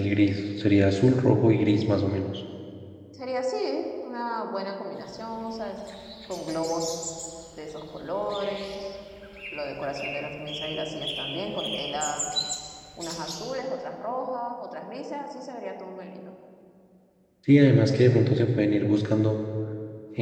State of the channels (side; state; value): both; identical; correlation 1.00